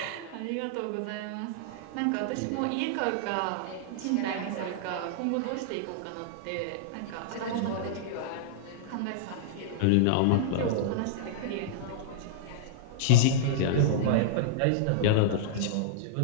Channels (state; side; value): different; both; correlation -0.02